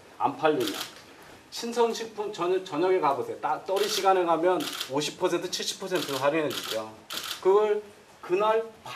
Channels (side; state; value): both; identical; correlation 1.00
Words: 안 팔리면. 신선식품 저녁에 가보세요. 떨이 시간에 가면 50% 70% 할인해 주죠. 그걸 그날